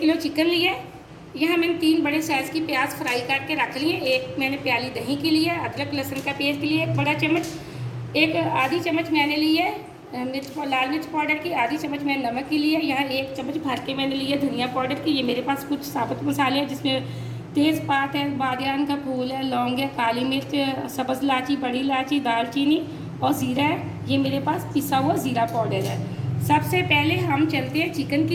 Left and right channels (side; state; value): both; identical; correlation 1.00